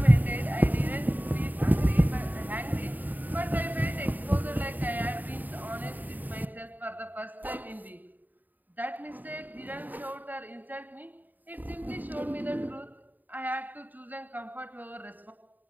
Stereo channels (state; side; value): late; left; 0.086 ms